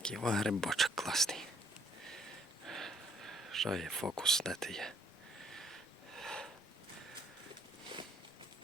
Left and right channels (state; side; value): normal; both; correlation 0.64